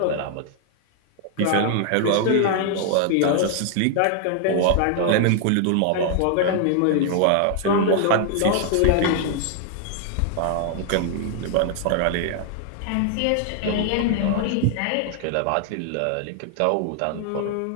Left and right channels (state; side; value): different; both; correlation 0.00